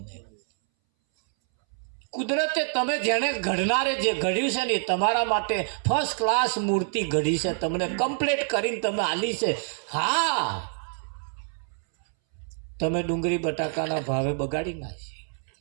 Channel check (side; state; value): left; silent; 60 dB below the other